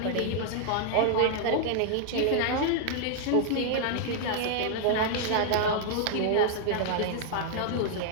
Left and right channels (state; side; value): different; both; correlation -0.01